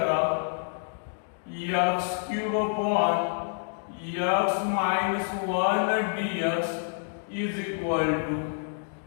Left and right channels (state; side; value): silent; right; digital silence